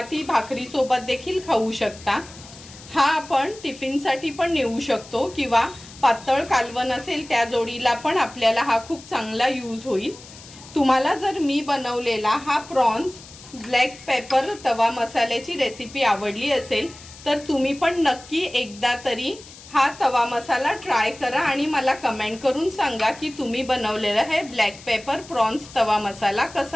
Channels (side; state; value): left; noise; hiss, 19 dB below the sound